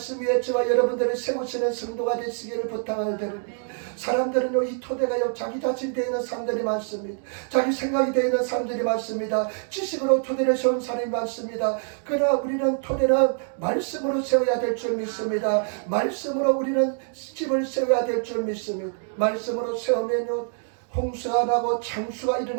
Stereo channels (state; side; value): silent; left; 61 dB below the other